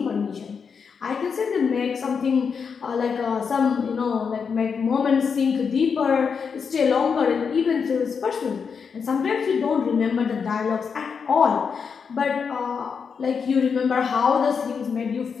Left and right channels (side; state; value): right; quieter; 6.1 dB